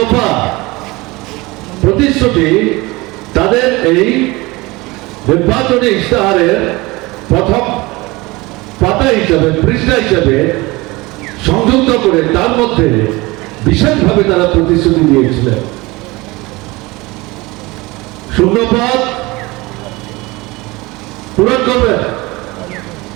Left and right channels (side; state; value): left; quieter; 22.5 dB